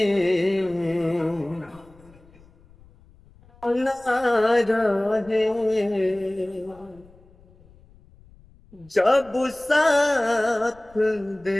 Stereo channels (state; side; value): noise; left; rumble, 27 dB below the sound